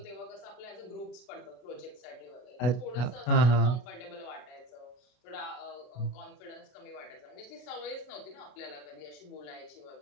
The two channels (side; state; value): right; late; 33 ms